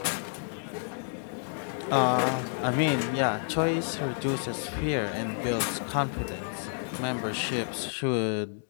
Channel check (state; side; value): silent; right; digital silence